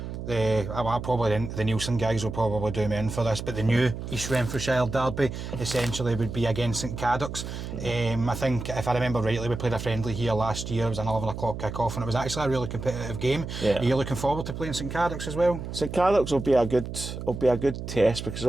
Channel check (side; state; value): right; noise; hum, 7 dB below the sound